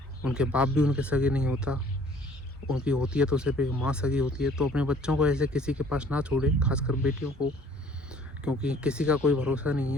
उनके बाप भी उनके सगे नहीं होता, उनकी होती है तो सिर्फ एक माँ सगी होती है। तो अपने बच्चों को ऐसे किसी के पास ना छोड़े, खासकर बेटियों को, क्योंकि किसी का कोई भरोसा नहीं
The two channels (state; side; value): normal; both; correlation 0.56